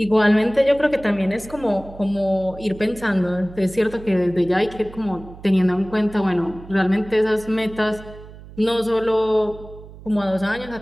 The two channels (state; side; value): noise; right; hum, 17 dB below the sound